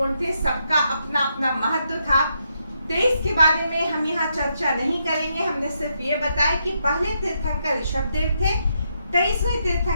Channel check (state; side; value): inverted; both; correlation -0.79